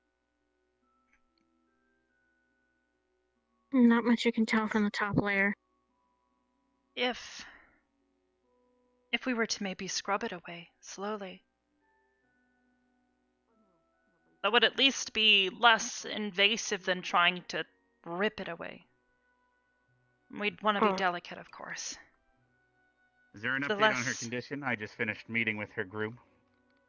Not much you can tell from the top layer. If we were to maybe scrub it away slowly, that would at least be less invasive than trying to rip it away. We'd want to be delicate, of course. Is there an The update on her less- condition? I just finished meeting with her group.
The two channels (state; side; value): identical; both; correlation 1.00